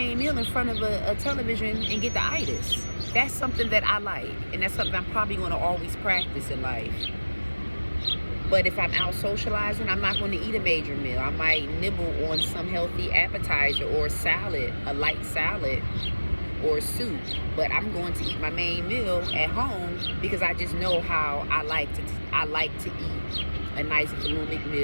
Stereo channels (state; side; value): inverted; both; correlation -1.00